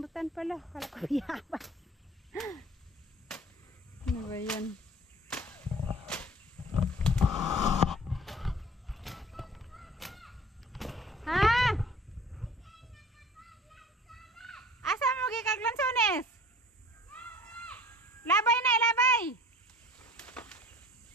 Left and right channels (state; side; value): normal; both; correlation 0.47